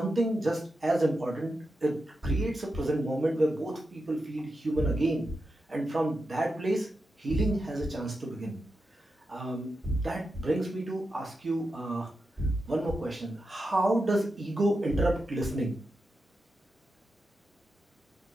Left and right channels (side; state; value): both; normal; correlation 0.89